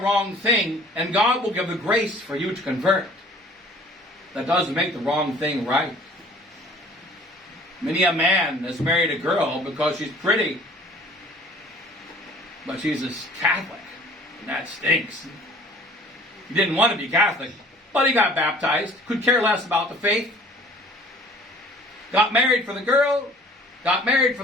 thing, and God will give the grace for you to convert. That doesn't make the wrong thing right. Many a man has married a girl because she's pretty, but she's a Catholic, and that stinks. He didn't want to be Catholic, but he got baptized, could care less about the faith. Got married for the girl, got married for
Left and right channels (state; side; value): normal; both; correlation 0.51